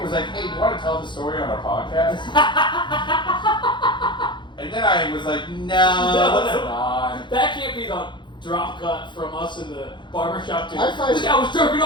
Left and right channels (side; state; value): right; late; 0.23 ms